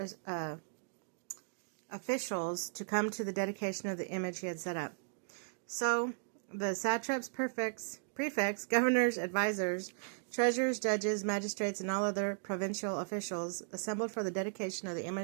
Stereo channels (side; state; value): left; silent; digital silence